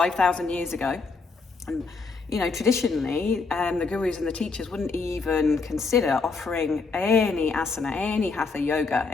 years ago. And, traditionally, the gurus and the teachers wouldn't even consider offering any asana, any hatha yoga,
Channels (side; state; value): right; quieter; 4.4 dB